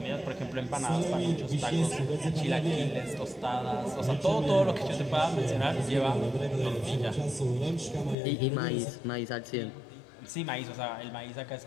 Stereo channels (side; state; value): right; drops out; at 8.2 s